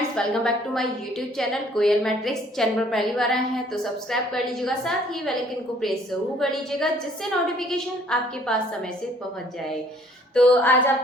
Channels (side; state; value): both; normal; correlation 0.59